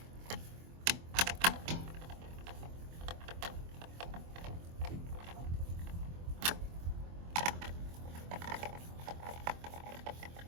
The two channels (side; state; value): left; late; 24 ms